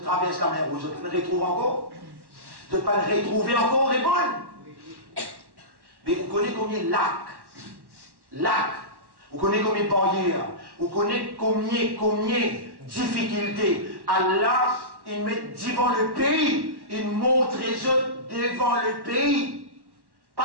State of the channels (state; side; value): late; left; 1.1 ms